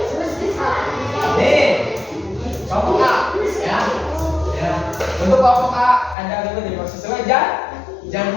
Nih. Kelompok A, ya. Ya. Untuk kelompok A ada ikut di sesuai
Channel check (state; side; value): drops out; right; at 6.2 s